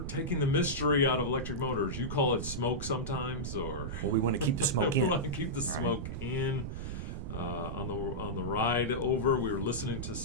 taking the mystery out of electric motors. You call it smoke sometimes, or... Well, we want to keep the smoke in. We want to keep the smoke in. On the ride over, we were listening to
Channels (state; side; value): noise; right; rumble, 5 dB below the sound